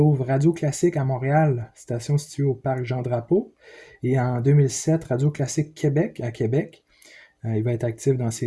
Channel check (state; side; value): identical; both; correlation 1.00